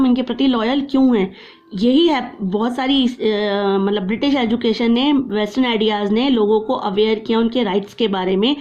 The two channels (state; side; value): identical; both; correlation 1.00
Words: इनके प्रति लॉयल क्यों हैं। यही है बहुत सारी मतलब ब्रिटिश एजुकेशन ने, वेस्टर्न आइडियाज़ ने लोगों को अवेयर किया उनके राइट्स के बारे में,